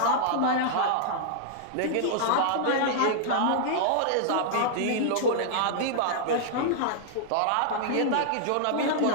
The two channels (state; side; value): different; both; correlation -0.01